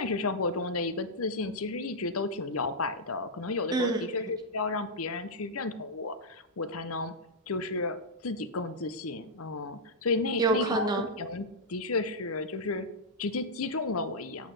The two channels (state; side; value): normal; both; correlation -0.07